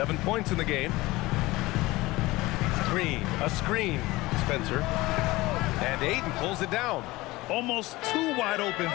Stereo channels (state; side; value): quieter; right; 20.1 dB